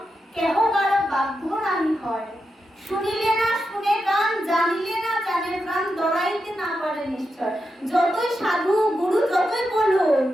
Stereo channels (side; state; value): both; normal; correlation 0.87